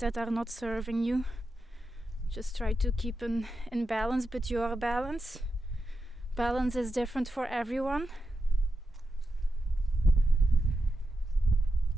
are not serving you. Just try to keep in balance, but your balance is different for everyone.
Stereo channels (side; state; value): both; normal; correlation 0.88